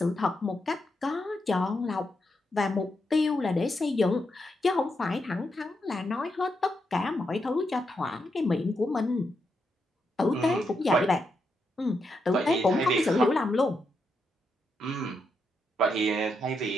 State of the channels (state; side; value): normal; both; correlation 0.82